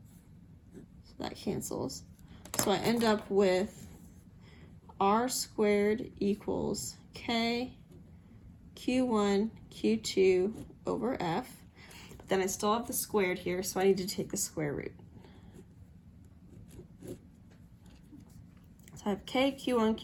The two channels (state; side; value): identical; both; correlation 1.00